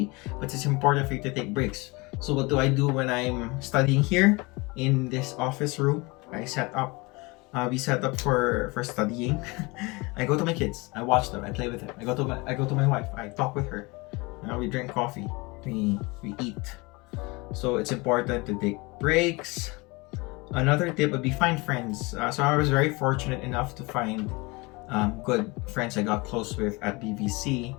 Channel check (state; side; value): quieter; right; 25.5 dB